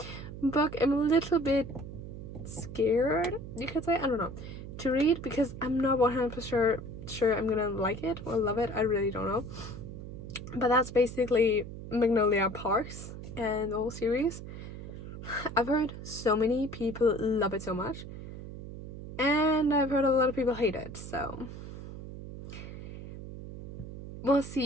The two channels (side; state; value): right; noise; hum, 11 dB below the sound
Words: a book I'm a little bit scared, you could say, I don't know, to read, because I'm not 100% sure I'm gonna like it or love it. I really don't know. But that's basically Magnolia Parks and the whole series. I've heard so many people love it so much, and I've heard a lot of people hate it, so we'll